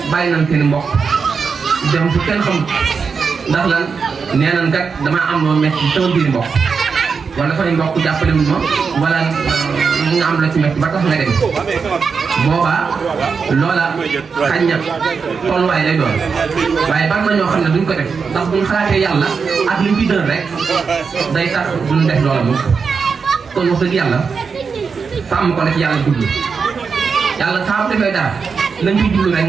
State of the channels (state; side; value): quieter; left; 5.5 dB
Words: bàyyi nañ seen mbokk dem fu kenn xamul ndax lan nee nañ kat damaa am loo metti sama biir mbokk wala fay mbokk jàppale wu ma wala nga am la ci metti ba tax nga dem boobaa loola xañ na tolluwaay lay doon waaye bari na ñoo xam ne duñ ko def ndax buñ xalaatee yàlla ak liñ ci dën rek day tax duñ def loola moom kon wax dëgg yàlla sàmm ko la ci yàlla jublu yàlla saa bu defee dara lañ ciy jublu rek